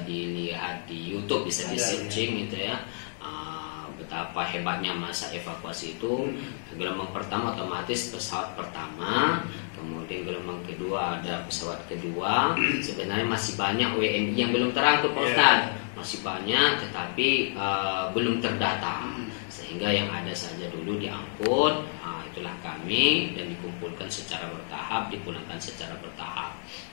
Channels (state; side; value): silent; right; digital silence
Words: dilihat di YouTube, bisa di searching gitu ya. Betapa hebatnya masa evakuasi itu. Gelombang pertama otomatis pesawat pertama, kemudian gelombang kedua ada pesawat kedua. Sebenarnya masih banyak WNI yang belum terangkut, Pak Ustaz. Masih banyak, tetapi belum terdata. Sehingga yang ada saja dulu diangkut, itulah kami, dan dikumpulkan secara bertahap, dipulangkan secara bertahap.